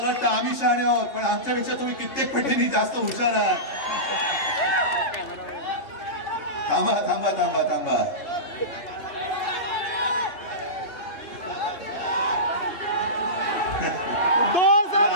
वाटतं आम्ही शहाणे आहोत, पण आमच्यापेक्षा तुम्ही कित्येक पटीने जास्त हुशार आहात. थांबा थांबा थांबा थांबा.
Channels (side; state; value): right; late; 3.6 ms